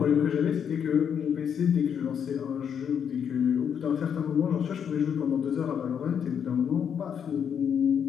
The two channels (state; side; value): quieter; right; 7.9 dB